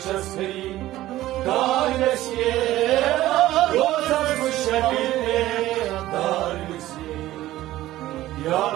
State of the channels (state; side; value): quieter; left; 15.3 dB